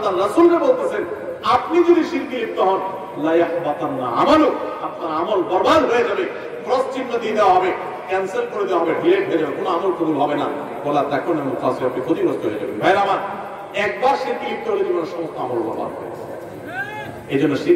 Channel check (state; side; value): identical; both; correlation 1.00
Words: তার রাসূলকে বলতেছেন, আপনি যদি শিরকে লিপ্ত হন, লায়াহবাতান্না আমালুক, আপনার আমল বরবাদ হয়ে যাবে, ক্রস চিহ্ন দিয়ে দেওয়া হবে, ক্যান্সেল করে দেওয়া হবে, ডিলিট হয়ে যাবে, কোনো আমল কবুল হবে না, বলা তখন আমি ফাঁসি, আপনি ক্ষতিগ্রস্ত হয়ে যাবেন। ভাইরা আমার, একবার শিরকে লিপ্ত হলে জীবনের সমস্ত আমল বরবাদ হয়ে যাবে। এই জন্য